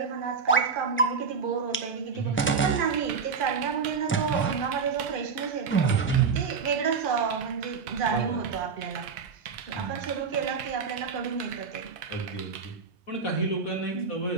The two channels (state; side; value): quieter; left; 5.6 dB